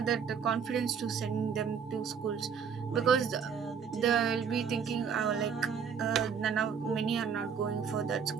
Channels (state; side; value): quieter; left; 6.8 dB